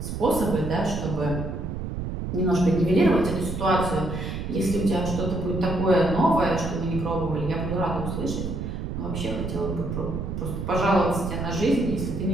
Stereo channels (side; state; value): right; noise; rumble, 4 dB below the sound